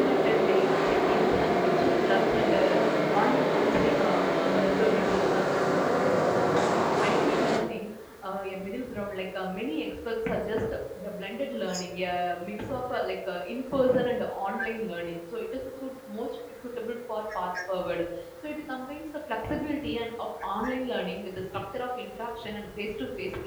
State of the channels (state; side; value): identical; both; correlation 1.00